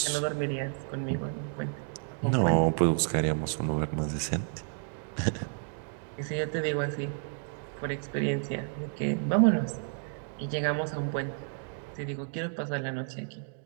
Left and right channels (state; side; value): silent; left; 57 dB below the other